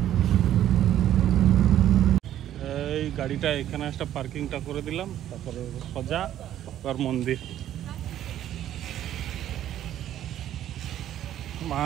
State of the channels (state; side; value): quieter; left; 11.7 dB